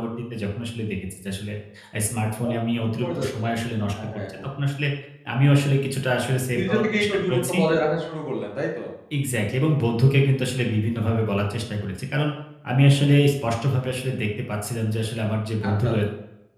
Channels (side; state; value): both; identical; correlation 1.00